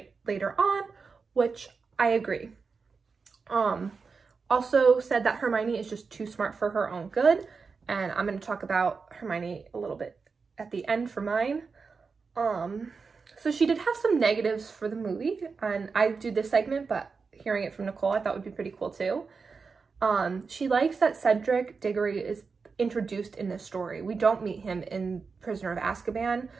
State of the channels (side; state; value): left; quieter; 4.9 dB